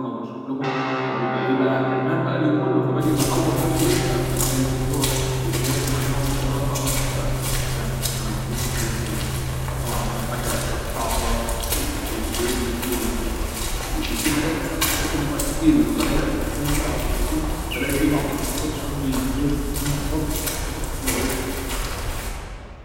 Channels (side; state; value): both; identical; correlation 1.00